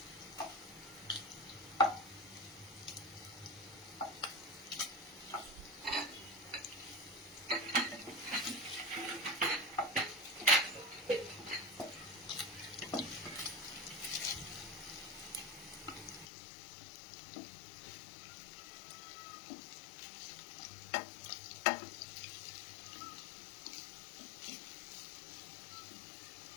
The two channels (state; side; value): drops out; right; at 16.2 s